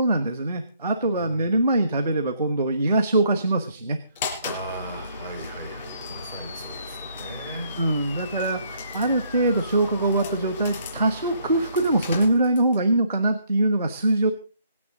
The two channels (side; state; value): both; inverted; correlation -0.68